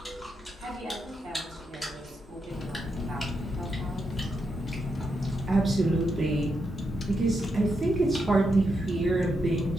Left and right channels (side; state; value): both; normal; correlation 0.83